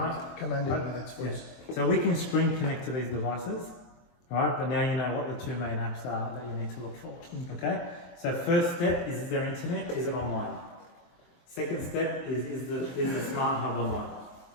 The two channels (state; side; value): late; right; 23 ms